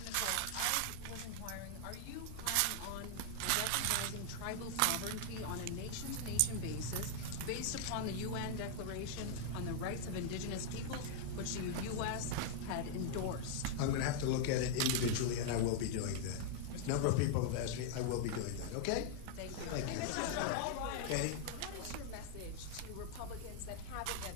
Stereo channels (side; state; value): both; different; correlation 0.00